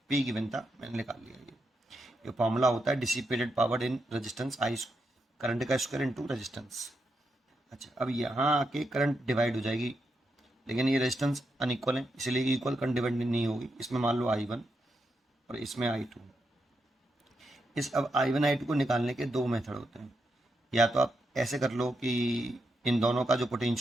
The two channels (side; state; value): both; normal; correlation 0.83